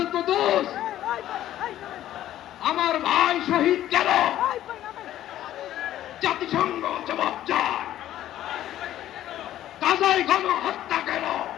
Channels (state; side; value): quieter; right; 12.8 dB